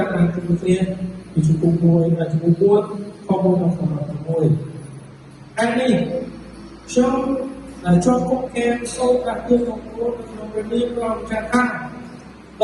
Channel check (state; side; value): identical; both; correlation 1.00